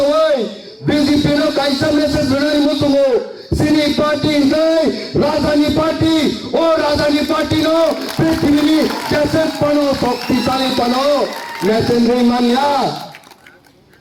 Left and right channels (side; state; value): both; identical; correlation 1.00